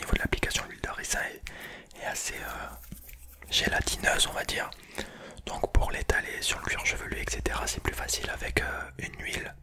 de l'application l'huile de ricin est assez gélatineuse on va dire. Donc pour l'étaler sur le cuir chevelu etc c'est plus facile avec une huile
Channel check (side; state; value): both; identical; correlation 1.00